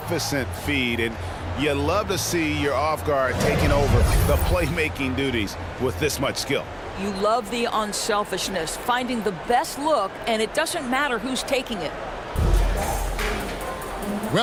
feed, and you love to see your off guard taking over the playmaking duties with this much skill. You love the unselfishness, finding the best look, and it doesn't matter who's taking it.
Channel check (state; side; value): identical; both; correlation 1.00